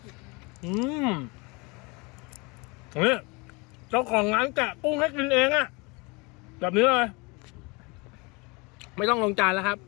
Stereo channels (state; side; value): quieter; right; 27.6 dB